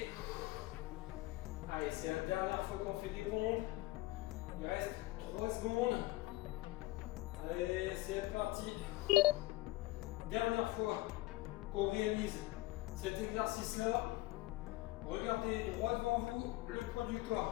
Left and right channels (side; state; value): right; quieter; 19.0 dB